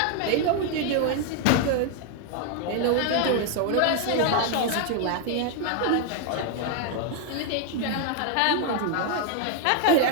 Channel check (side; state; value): both; different; correlation 0.00